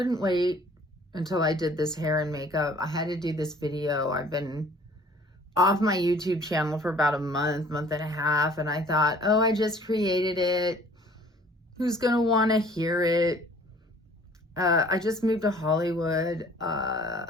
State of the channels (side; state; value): both; normal; correlation 0.53